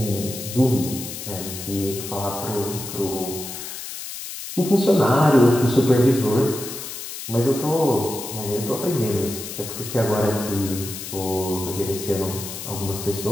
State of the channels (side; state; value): left; noise; hiss, 9 dB below the sound